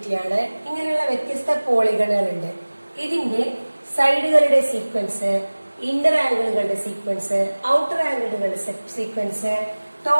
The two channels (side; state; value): both; inverted; correlation -1.00